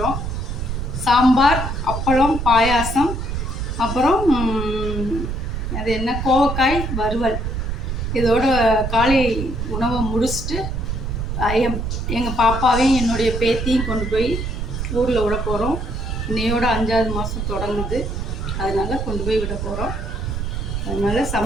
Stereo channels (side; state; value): right; noise; rumble, 3 dB below the sound